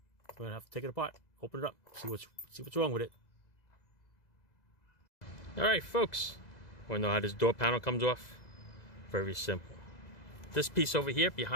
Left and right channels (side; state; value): right; late; 2.0 ms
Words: We're gonna have to take it apart, open it up, see what's wrong with it. Alright folks, wanna know how this door panel comes off? Very simple. This piece over here